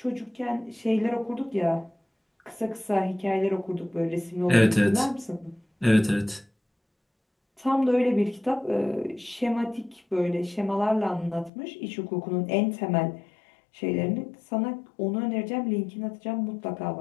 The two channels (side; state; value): right; drops out; at 11.5 s